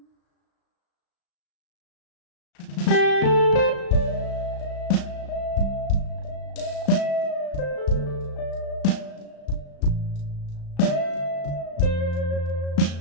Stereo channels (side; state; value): right; late; 35 ms